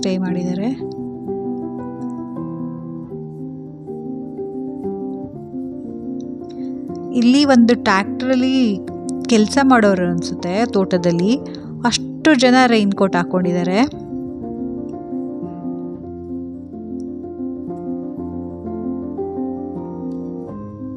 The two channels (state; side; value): identical; both; correlation 1.00